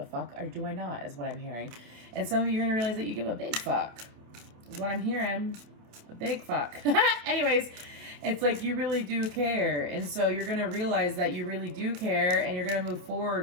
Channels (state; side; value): late; left; 27 ms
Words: fuck or do I not, is what I'm hearing. And some of you are going to realize that you give a big fuck, is what I'm hearing. A big fuck. Anyways, it's like you really do care. And so you're going to realize that you really do care and you're going to move